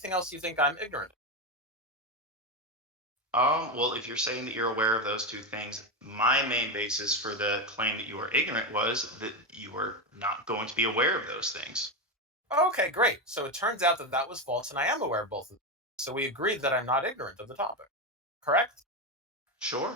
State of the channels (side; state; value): both; normal; correlation 0.12